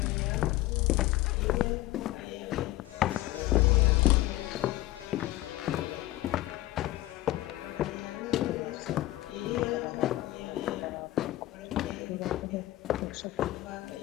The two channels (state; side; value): quieter; right; 16.7 dB